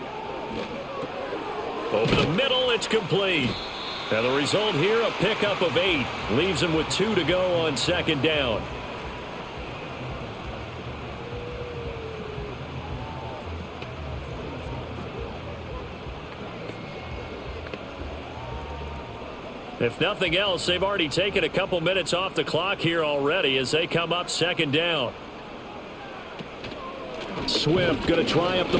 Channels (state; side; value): identical; both; correlation 1.00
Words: Over the middle, it's complete. And the result here, a pickup of 8. Leaves him with 2 to go on second down. If nothing else, they've already taken a couple minutes off the clock here already as they come up second down. Swift going to try up the